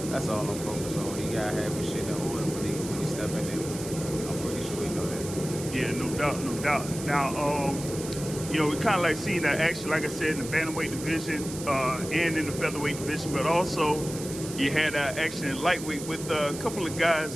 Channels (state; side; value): noise; right; hiss, 11 dB below the sound